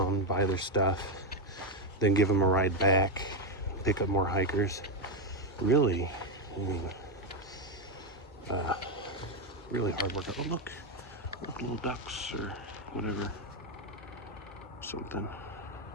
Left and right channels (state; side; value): normal; both; correlation 0.05